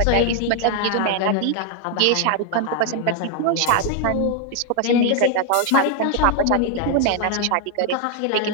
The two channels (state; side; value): different; both; correlation 0.00